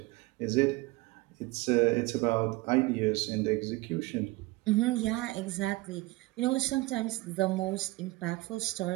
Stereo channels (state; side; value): quieter; left; 21.0 dB